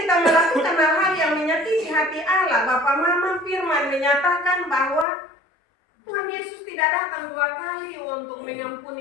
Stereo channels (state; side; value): drops out; right; at 5.1 s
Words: kita melakukan hal-hal yang menyakiti hati Allah, Bapak Mama, firman menyatakan bahwa Tuhan Yesus tidak datang 2 kali untuk